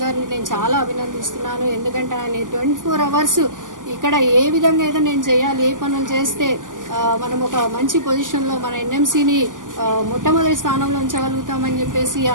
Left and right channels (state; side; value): late; left; 0.88 ms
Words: గారిని నేను చాలా అభినందిస్తున్నాను. ఎందుకంటే ఆయన 24 అవర్స్ ఇక్కడ ఏ విధంగా ఏదో నేను చేయాలి, ఏ పనులు చేస్తే మనం ఒక మంచి పొజిషన్లో మన ఎన్ఎంసీని మొట్టమొదటి స్థానంలో ఉంచగలుగుతామని చెప్పేసి